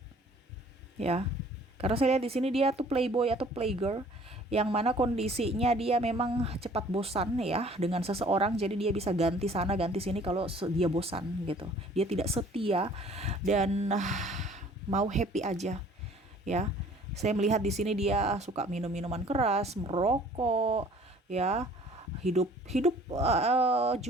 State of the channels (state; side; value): normal; both; correlation 0.53